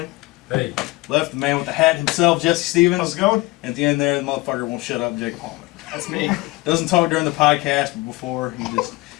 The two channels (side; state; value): right; quieter; 21.8 dB